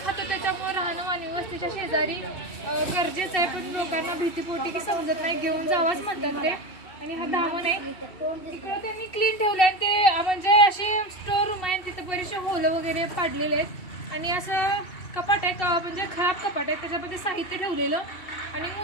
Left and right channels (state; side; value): late; right; 2.7 ms